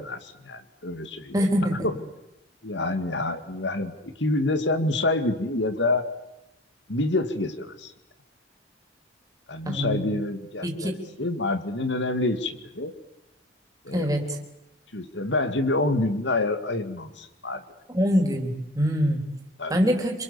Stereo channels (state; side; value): normal; both; correlation 0.40